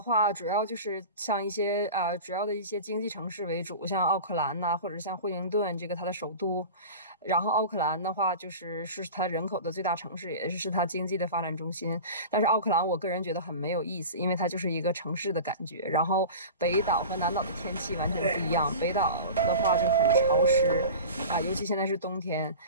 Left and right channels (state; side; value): inverted; both; correlation -0.34